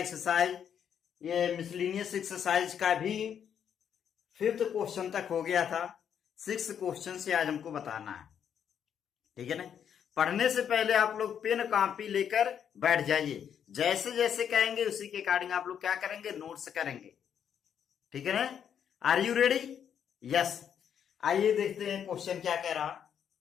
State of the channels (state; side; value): quieter; right; 8.5 dB